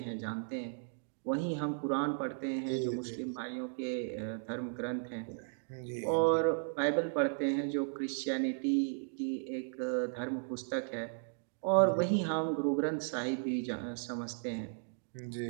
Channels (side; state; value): left; silent; digital silence